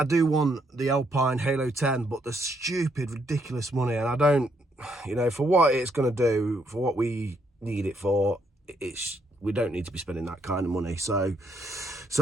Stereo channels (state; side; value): normal; both; correlation 0.74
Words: do want the Alpine Halo 10, but the stupid, ridiculous money, and I don't, for what it's going to do, for what we need it for, we don't need to be spending that kind of money. So